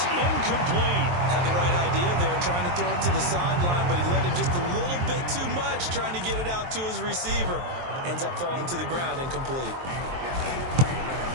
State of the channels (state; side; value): late; left; 23 ms